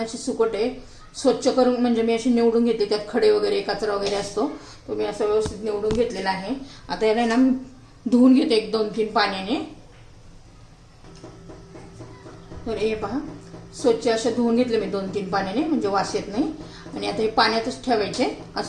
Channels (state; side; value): identical; both; correlation 1.00